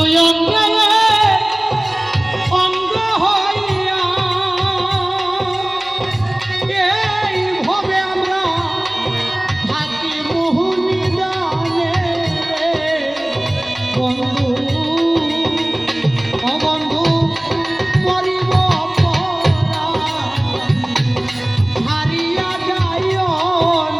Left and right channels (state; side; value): noise; left; hum, 27 dB below the sound